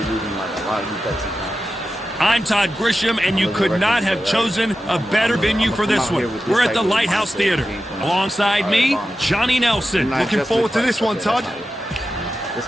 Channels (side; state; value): both; normal; correlation 0.92